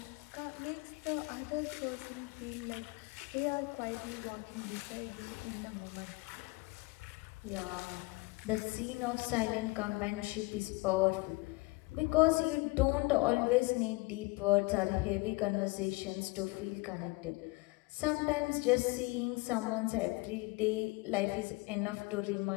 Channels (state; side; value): quieter; right; 25.1 dB